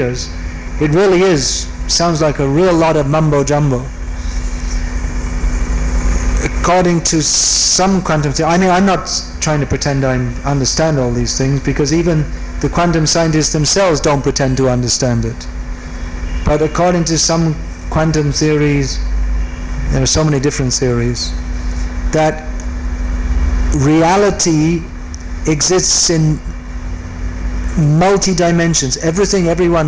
it really sounds like a real lot of mumbo jumbo. According to some quantum theory, I'm not trying to pretend I understand all these things, because even the quantum scientists themselves don't pretend to understand it. But according to some quantum theories, there are so many different theories, that reality exists in multi-dimensions. Everything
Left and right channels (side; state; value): both; identical; correlation 1.00